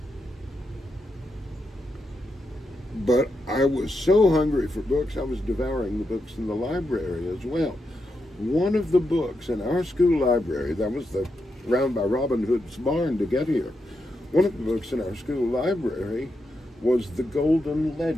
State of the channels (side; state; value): both; normal; correlation 0.85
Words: But I was so hungry for books, I was devouring the books in the library as well. One of the books in our school library, that was round by Robin Hood's barn to get here, one of the books in our school library was The Golden